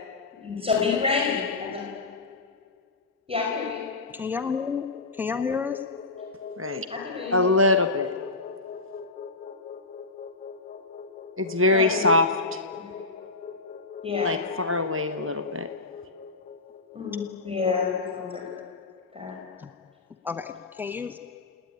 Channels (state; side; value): quieter; right; 3.3 dB